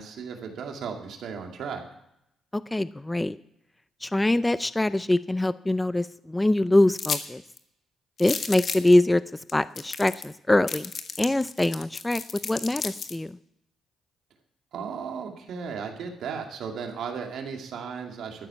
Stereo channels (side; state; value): both; normal; correlation 0.97